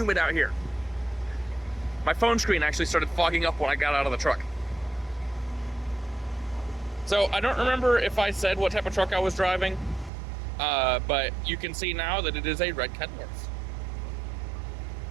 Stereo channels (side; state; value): left; drops out; at 10.1 s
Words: out here. My phone screen actually started fogging up when I got out of the truck. So, I don't remember if I said what type of truck I was driving, but you can see now that it is a red Kenworth.